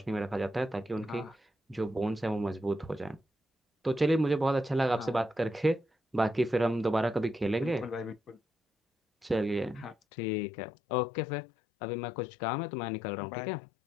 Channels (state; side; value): drops out; right; at 10.0 s